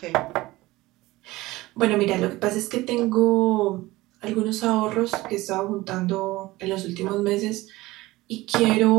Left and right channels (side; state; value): left; quieter; 19.1 dB